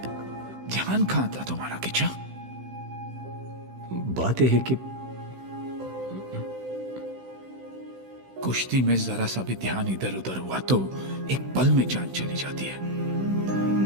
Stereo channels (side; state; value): left; late; 16 ms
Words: ध्यान कहां था तुम्हारा किचा? बात यह है कि कुश्ती में जरा सा भी ध्यान इधर उधर हुआ तो एक पल में जान चली जाती है।